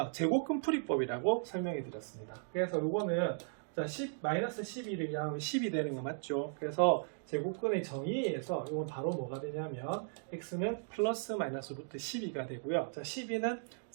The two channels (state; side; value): silent; left; digital silence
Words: 제곱근 풀이법이라고 설명해 드렸습니다. 그래서 요거는 자, 마이너스 12를 양하면 10이 되는 거 맞죠? 그래서 제곱근의 정의에 의해서 이건 바로 뭐가 되냐면 x는 플러스 마이너스 루트 12가 되고요. 자, 12는